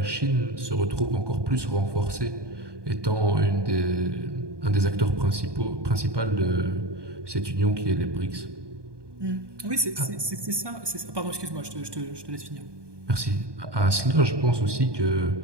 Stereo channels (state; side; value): late; left; 1.2 ms